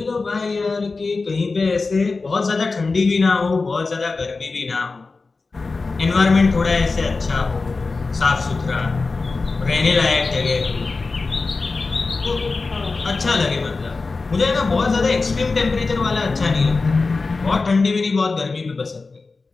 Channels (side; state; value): right; quieter; 3.9 dB